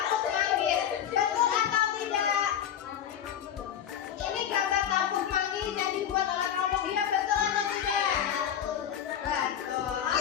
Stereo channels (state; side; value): quieter; right; 9.5 dB